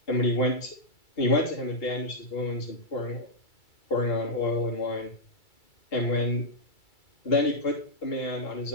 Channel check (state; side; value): late; right; 2.3 ms